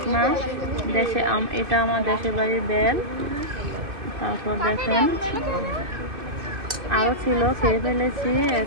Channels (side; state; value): left; late; 2.6 ms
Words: এটা আমার দেশের বাড়ির বেল। তারপর দেখেন আরও ছিল, খেয়ে ফেলেছি।